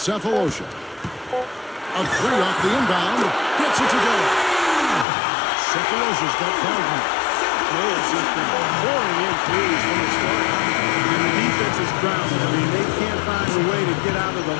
A three off the inbound. Gets it to go. Cephalosha's got 5 now. Players just been pouring in threes from the start. And the defense is grounded. I mean, they can't find a way to get out of the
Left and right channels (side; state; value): right; drops out; at 5.1 s